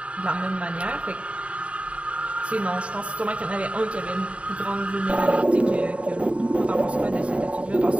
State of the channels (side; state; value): left; late; 0.063 ms